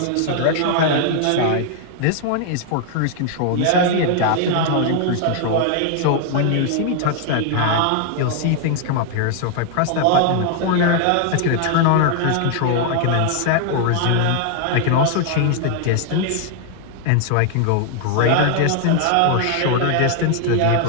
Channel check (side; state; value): both; different; correlation 0.00